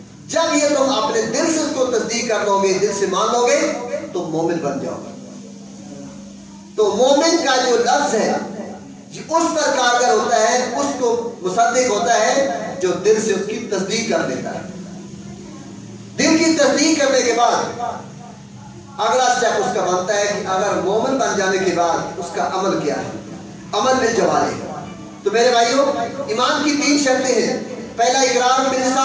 جب یہ تم اپنے دل سے اس کو تصدیق کر لو گے، دل سے مان لو گے، تو مومن بن جاؤ گے۔ تو مومن کا جو لفظ ہے اس پر کارگر ہوتا ہے، اس کو مصدق ہوتا ہے جو دل سے اس کی تصدیق کر لیتا ہے۔ دل کی تصدیق کرنے کے بعد اگلا اسٹیپ اس کا بنتا ہے کہ اگر مومن بن جانے کے بعد اس کا عمل کیا ہے، عمل بالجوارح۔ تو میرے بھائیوں، ایمان کی 3 شرطیں ہیں۔ پہلا اقرار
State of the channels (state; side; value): identical; both; correlation 1.00